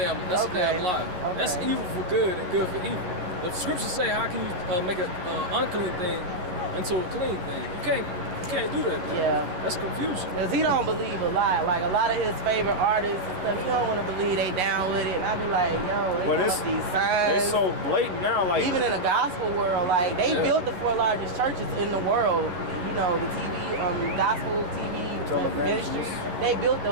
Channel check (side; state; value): left; late; 11 ms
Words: lie. Okay. That's evil for good and good for evil. The scriptures say, how can you make an unclean thing into a clean thing? You can't do that. Man. Yeah. That's confusion. Because he don't believe a lot. Like a lot of his favorite artists and stuff, he don't want to believe they down with it. And I be like, yo, they But got these signs. They so blatant now, like Even in the gospel world, like they built the 4 largest churches in the world. You know, the TV, gospel TV ministry. They built